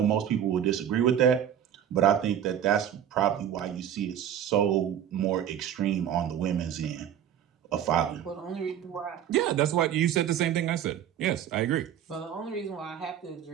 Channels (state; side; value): quieter; left; 9.8 dB